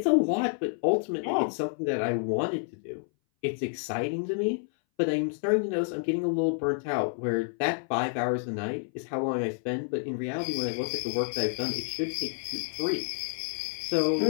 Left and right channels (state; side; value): silent; right; 58 dB below the other